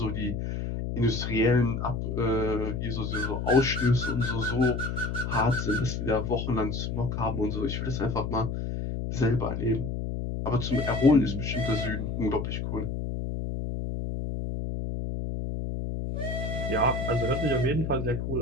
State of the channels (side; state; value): left; noise; hum, 3 dB below the sound